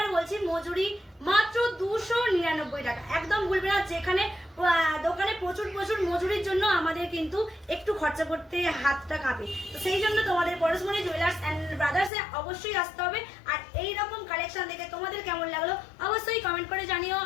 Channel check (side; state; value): right; drops out; at 12.1 s